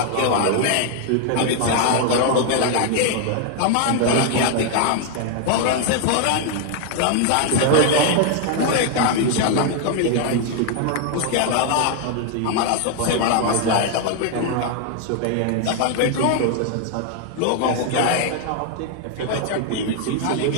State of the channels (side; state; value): both; different; correlation 0.00